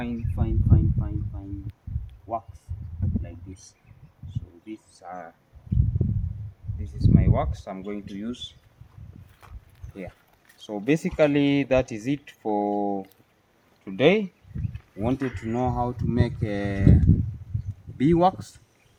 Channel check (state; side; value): identical; both; correlation 1.00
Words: wax like this. So this is my wax I'm going to use here. So basically that is it for today. Wanted to know how to make a bee wax.